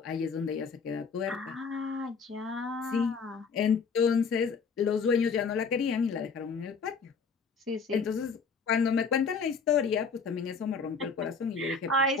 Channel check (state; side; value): quieter; right; 5.1 dB